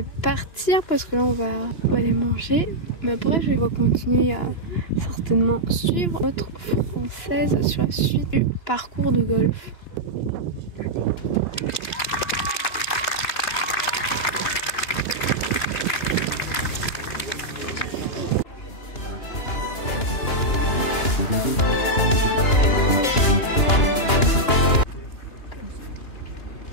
partir parce que là on va aller manger. Mais bref, je vais continuer à certainement suivre notre française sur la suite du parcours de golf.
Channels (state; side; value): late; right; 2.9 ms